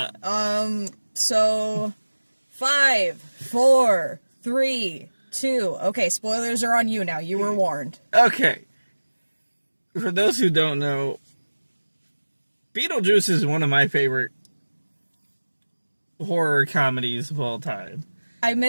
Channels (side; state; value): both; inverted; correlation -1.00